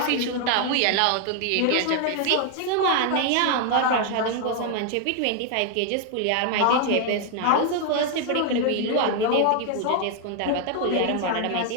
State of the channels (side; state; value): both; different; correlation 0.00